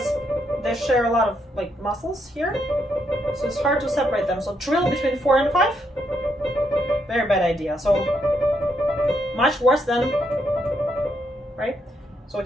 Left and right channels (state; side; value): normal; both; correlation 0.77